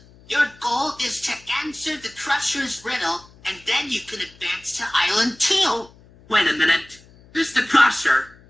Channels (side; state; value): left; noise; hum, 26 dB below the sound